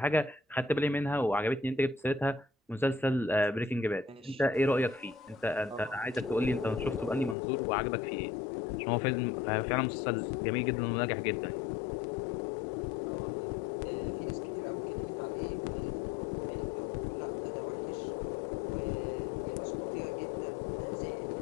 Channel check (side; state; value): right; drops out; at 7.4 s